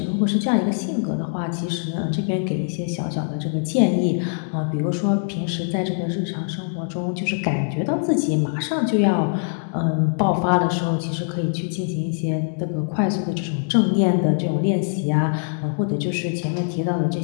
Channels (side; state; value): right; silent; 64 dB below the other